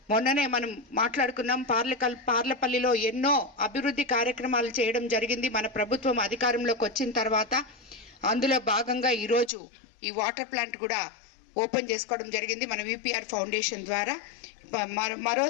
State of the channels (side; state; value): right; drops out; at 9.5 s